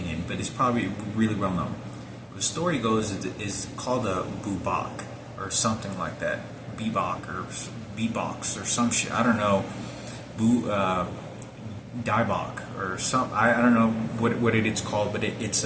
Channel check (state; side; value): identical; both; correlation 1.00